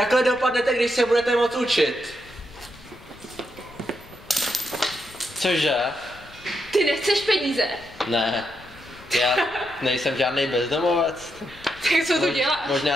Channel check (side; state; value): left; noise; rumble, 22 dB below the sound